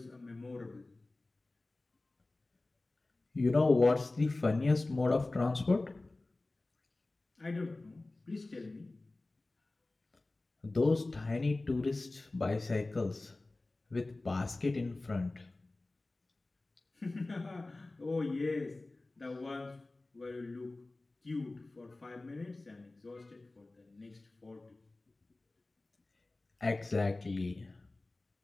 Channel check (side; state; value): right; quieter; 3.0 dB